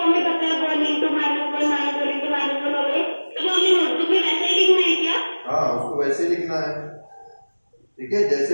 में बताया 1 इंटू -1 -1 इंटू -1 हो गए, तो हमें नोटबुक में वैसे ही लिखना है क्या? हाँ, उसको वैसे ही लिखना है। ठीक है, जैसे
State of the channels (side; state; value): both; inverted; correlation -1.00